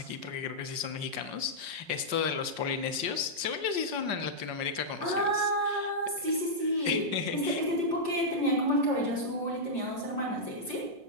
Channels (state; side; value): late; left; 5.6 ms